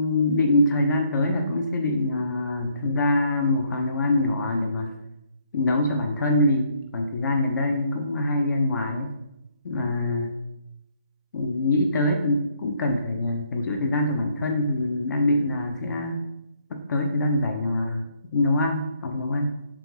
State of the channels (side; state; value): both; inverted; correlation -0.68